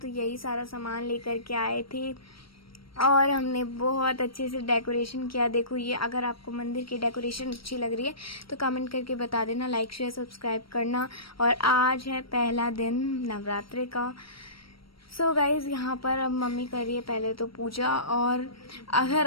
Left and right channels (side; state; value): right; late; 0.75 ms